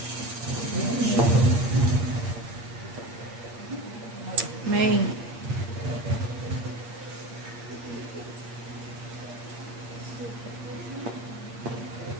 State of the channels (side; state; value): left; late; 8.6 ms